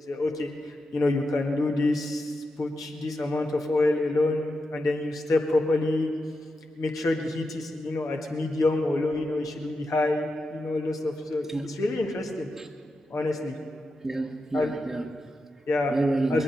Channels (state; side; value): normal; both; correlation 0.88